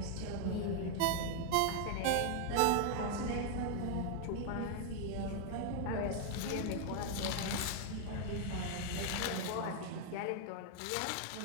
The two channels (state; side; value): different; both; correlation 0.00